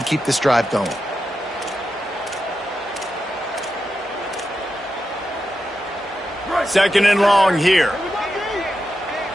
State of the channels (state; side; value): normal; both; correlation 0.89